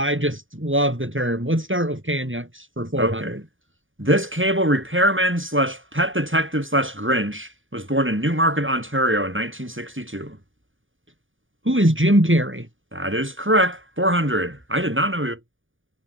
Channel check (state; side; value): late; left; 0.57 ms